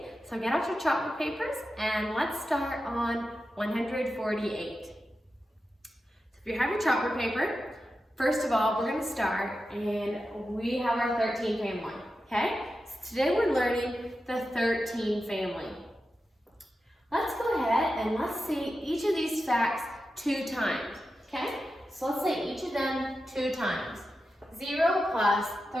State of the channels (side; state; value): both; normal; correlation 0.91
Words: So get out your chalkboard papers and let's start on 148. So if you have your chalkboard paper, first of all, we're going to start and we have our 13 family, okay? So today we're learning the 13 family. Let's go ahead and let's see each of these facts 2 times, okay? So let's say each of them 2 times. 0 plus